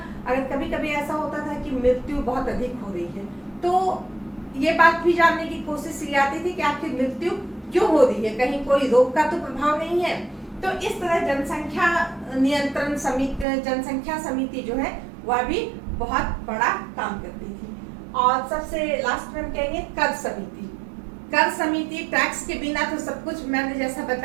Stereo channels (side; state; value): left; drops out; at 13.5 s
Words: अगर कभी कभी ऐसा होता था कि मृत्यु बहुत अधिक हो रही है तो ये बात भी जानने की कोशिश की जाती थी कि आखिर मृत्यु क्यों हो रही है, कहीं कोई रोग का तो प्रभाव नहीं है। तो इस तरह जनसंख्या नियंत्रण समिति, जनसंख्या समिति जो है वह भी बहुत बड़ा काम करती थी। और सबसे लास्ट में हम कहेंगे कर समिति। कर समिति टैक्स के बिना तो सब कुछ, मैंने जैसा